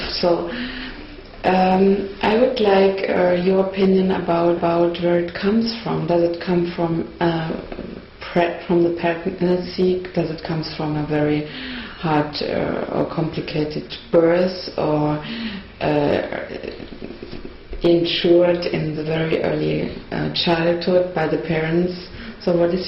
So I would like your opinion about where it comes from. Does it come from the pregnancy? Does it come from a very hard or complicated birth, or insured in the very early childhood by the parents? So what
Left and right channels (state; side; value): identical; both; correlation 1.00